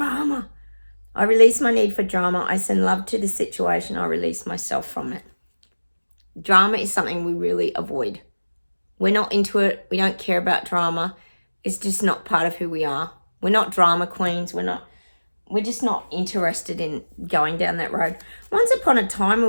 I release my need for drama. I send love to the situation. I release myself from it. Drama is something we really avoid. We're not into it. We don't care about drama. It's just not part of who we are. We're not drama queens. We're just not interested in going down that road. Once upon a time, we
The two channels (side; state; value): both; inverted; correlation -1.00